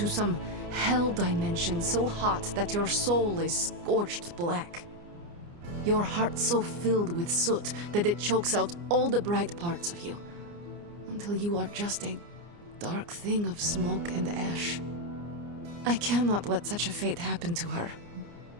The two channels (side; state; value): left; late; 29 ms